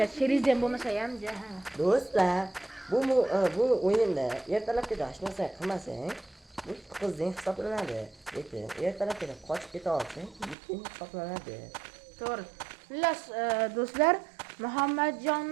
cherizem bo'lmasa ham, Do'stlar, bu o'yinda ertalabga hech narsa qilmasang, bu qizning hisoblanadi. Lekin ertalabga qochib keta olsang, yutqing hisoblanadi. To'g'ri. Xullas, do'stlar,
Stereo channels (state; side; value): drops out; left; at 10.6 s